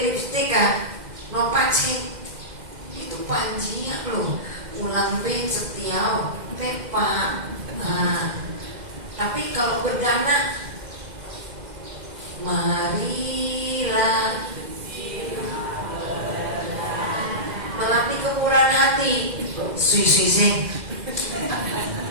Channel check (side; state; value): left; late; 2.0 ms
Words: lipstick no pakai itu panjinya lo. Ulang ben setiau pepa. Tapi kalau berdana, marilah melatih kemurahan hati. Sui.